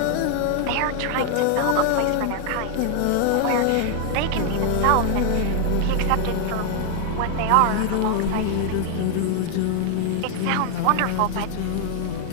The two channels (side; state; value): both; different; correlation 0.00